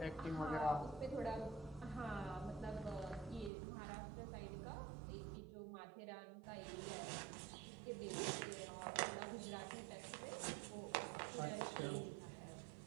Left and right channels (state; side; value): drops out; left; at 3.5 s